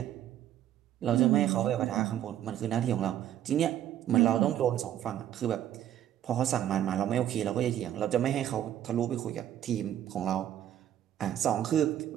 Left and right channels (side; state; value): left; quieter; 11.4 dB